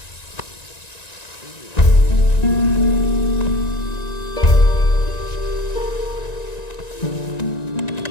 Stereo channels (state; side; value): late; right; 1.9 ms